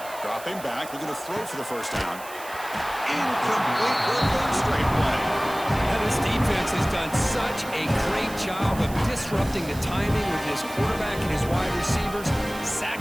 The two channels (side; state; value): right; noise; hiss, 16 dB below the sound